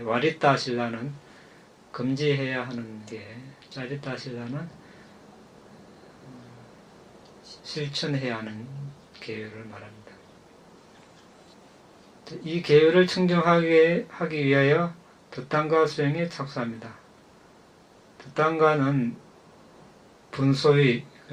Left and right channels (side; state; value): both; identical; correlation 1.00